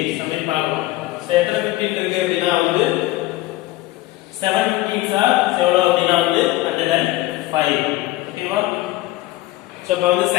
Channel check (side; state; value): right; quieter; 17.7 dB